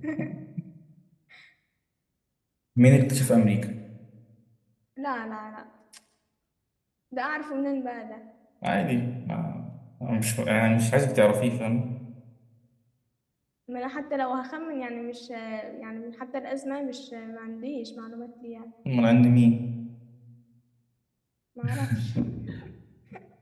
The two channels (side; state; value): both; identical; correlation 1.00